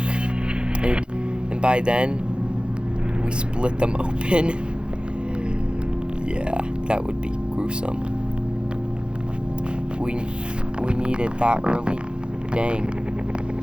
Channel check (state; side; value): late; left; 0.053 ms